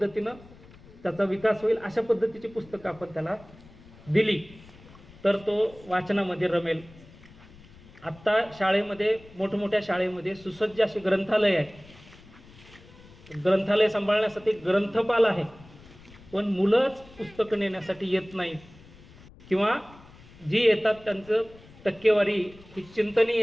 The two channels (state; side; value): noise; left; rumble, 22 dB below the sound